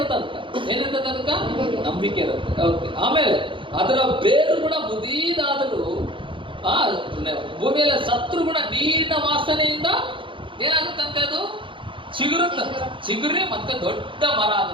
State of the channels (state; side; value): late; left; 0.25 ms